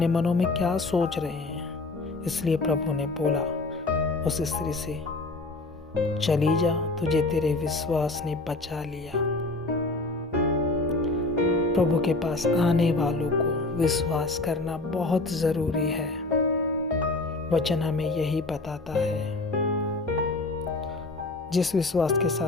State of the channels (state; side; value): quieter; right; 3.1 dB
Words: मनों में क्या सोच रहे हैं, इसलिए प्रभु ने बोला उस स्त्री से चली जा, तुझे तेरे विश्वास ने बचा लिया। प्रभु के पास आने वालों को विश्वास करना बहुत जरूरी है। वचन हमें यही बताता है। जिस विश्वास के